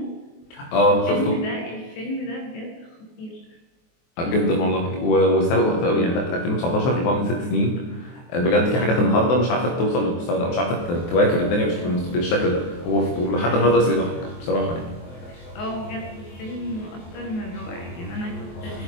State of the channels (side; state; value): right; late; 23 ms